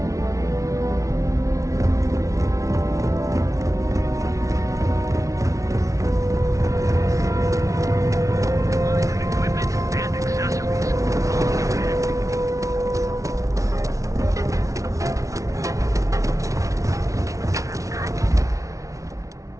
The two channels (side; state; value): left; late; 0.16 ms